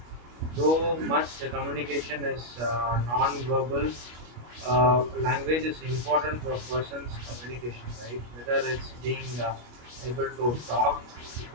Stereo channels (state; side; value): late; left; 25 ms